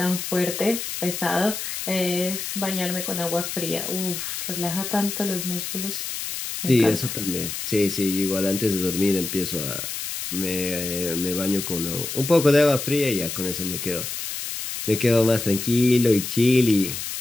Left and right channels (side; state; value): left; noise; hiss, 5 dB below the sound